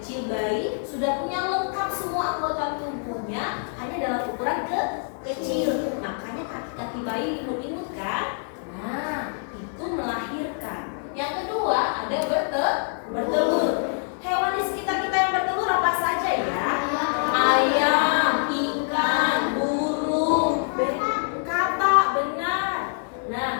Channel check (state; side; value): silent; right; 61 dB below the other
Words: bayi sudah punya lengkap semua anggota tubuhnya, hanya dalam ukuran kecil. Makanya kaki-kaki bayi imut-imut kan? Nah, itu melahirkan. Yang kedua ada bertelur. Hewan di sekitar kita yang bertelur apa saja ya? Ayam, ikan, burung, katak, benar.